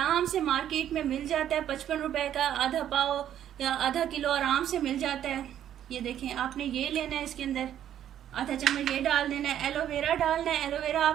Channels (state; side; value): quieter; left; 10.7 dB